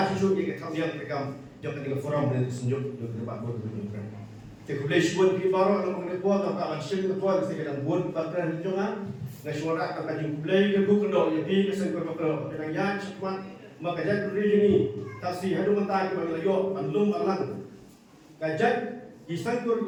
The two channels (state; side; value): identical; both; correlation 1.00